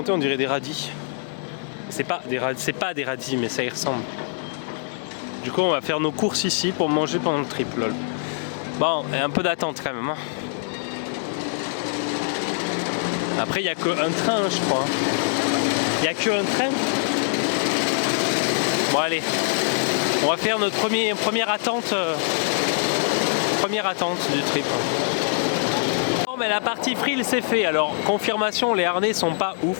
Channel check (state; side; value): silent; right; digital silence